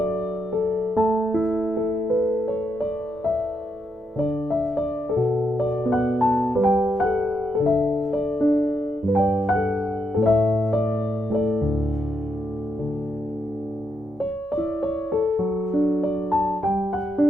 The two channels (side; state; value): both; normal; correlation 0.81